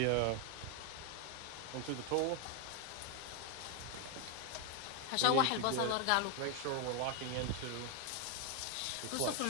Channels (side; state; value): both; different; correlation 0.01